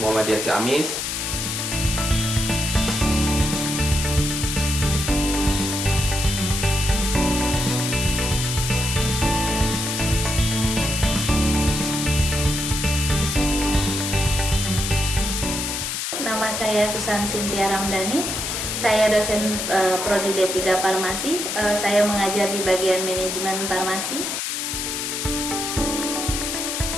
Muhammadiyah Ciamis. Nama saya Susan Cynthia Ramdhani. Saya dosen Prodi D3 Farmasi. Saya mengajar di bagian manajemen farmasi.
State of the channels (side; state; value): left; noise; hiss, 2 dB below the sound